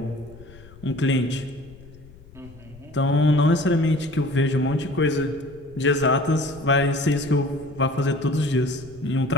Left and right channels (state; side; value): noise; left; rumble, 21 dB below the sound